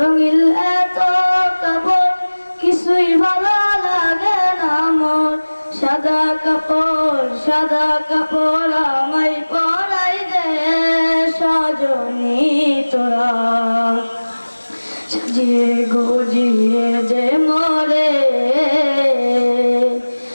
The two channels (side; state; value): both; inverted; correlation -1.00